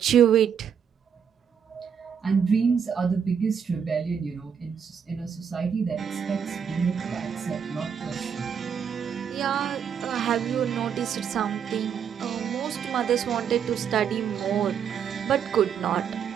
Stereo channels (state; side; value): quieter; left; 7.5 dB